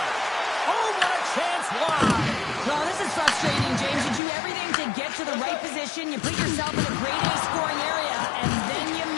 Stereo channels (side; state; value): right; drops out; at 4.2 s